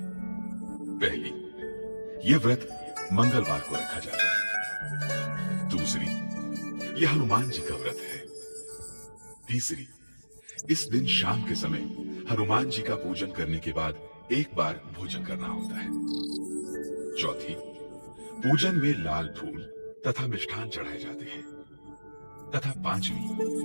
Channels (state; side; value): inverted; both; correlation -1.00